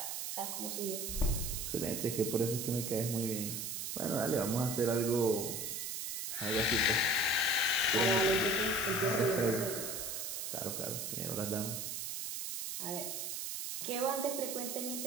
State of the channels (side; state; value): right; noise; hiss, 4 dB below the sound